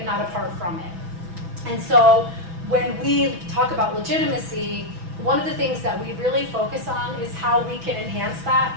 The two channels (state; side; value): late; left; 6.1 ms